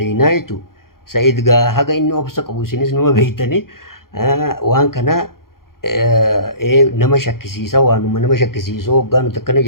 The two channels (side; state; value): right; late; 0.92 ms